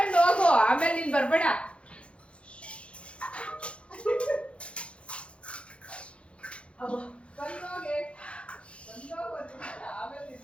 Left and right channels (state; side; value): late; right; 0.059 ms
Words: ಹೋಗು ಆಮೇಲೆ ನೀನ್ ಬರ್ಬೇಡ